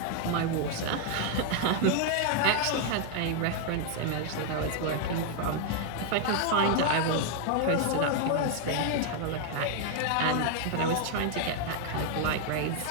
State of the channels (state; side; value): different; both; correlation 0.00